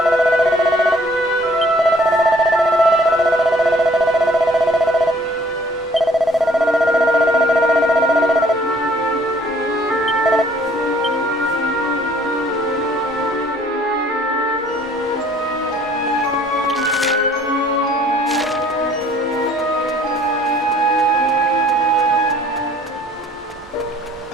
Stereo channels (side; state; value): both; normal; correlation 0.58